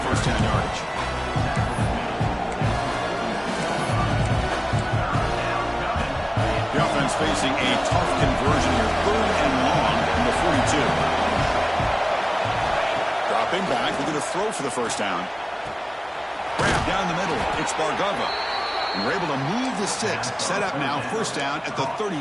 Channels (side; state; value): both; identical; correlation 1.00